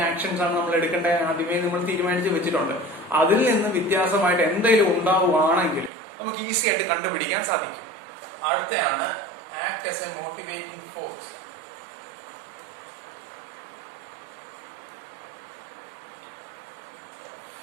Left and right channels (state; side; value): drops out; left; at 5.9 s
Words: ആക്ഷൻസ് ആണ് നമ്മൾ എടുക്കേണ്ടത് ആദ്യമേ നമ്മൾ തീരുമാനിച്ച് വെച്ചിട്ടുണ്ട്. അതിൽ നിന്ന് വ്യത്യാസമായിട്ട് എന്തെങ്കിലും ഉണ്ടാവുകയാണെങ്കിൽ നമുക്ക് ഈസി ആയിട്ട് കണ്ടുപിടിക്കാൻ സാധിക്കും. അടുത്തയാണ് act as a motivating force.